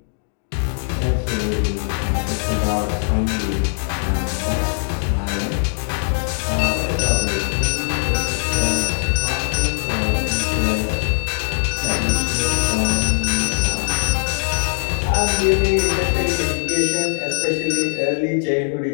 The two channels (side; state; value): right; silent; digital silence